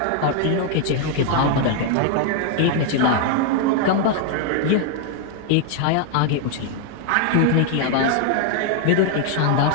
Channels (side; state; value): both; different; correlation 0.00